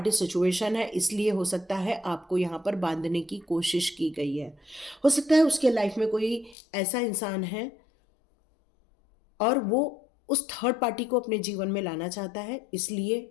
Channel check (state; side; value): drops out; right; at 6.6 s